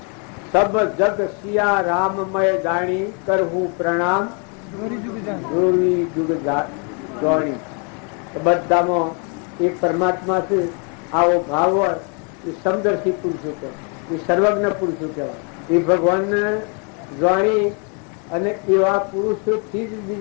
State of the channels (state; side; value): quieter; right; 37.6 dB